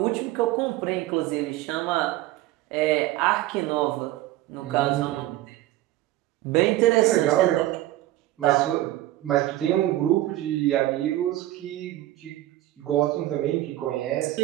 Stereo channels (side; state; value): left; quieter; 15.5 dB